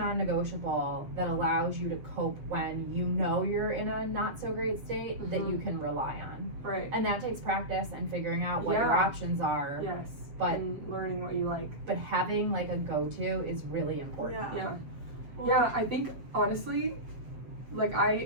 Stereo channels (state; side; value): late; left; 7.8 ms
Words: that allows you to cope when you know you're in a not so great state that you can rely on. Right. And that takes practice and figuring out what your options are. Yes. But and learning what you like. But having like a go-to is really important. Yeah, I think honestly, like